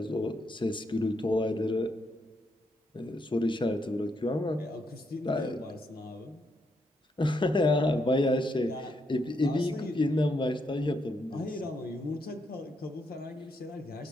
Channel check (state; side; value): normal; both; correlation 0.78